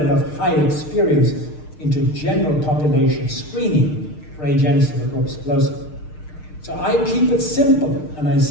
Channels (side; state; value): right; late; 6.6 ms